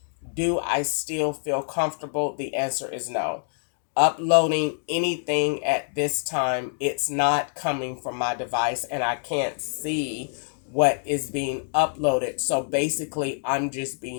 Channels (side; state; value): right; silent; digital silence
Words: do I still feel comfortable? The answer is no. Uploading anything at this time, it's not coming from my device, and I can't see what is being uploaded. So basically, I'm just